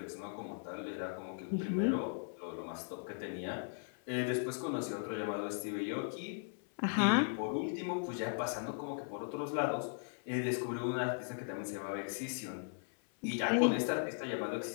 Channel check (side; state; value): right; silent; 53 dB below the other